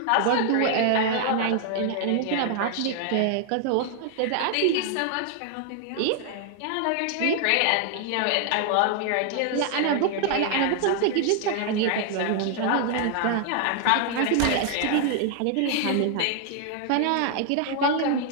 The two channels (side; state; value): both; different; correlation 0.00